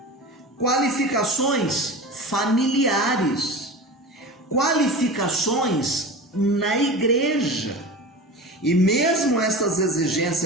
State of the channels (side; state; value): both; normal; correlation 0.31